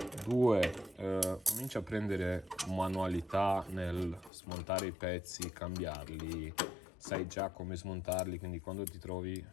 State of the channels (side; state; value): right; drops out; at 4.3 s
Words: due, cominci a prendere manualità nel smontare i pezzi, cambiarli, sai già come smontarli, quindi quando ti trovi